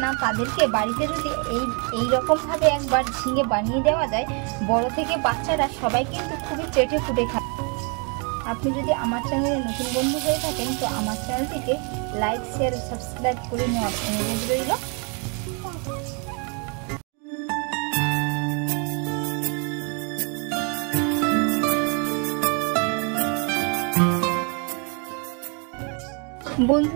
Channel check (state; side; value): quieter; left; 35.5 dB